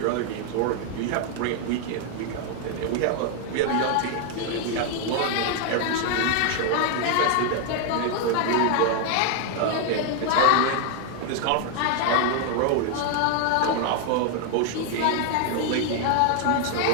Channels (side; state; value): both; different; correlation 0.00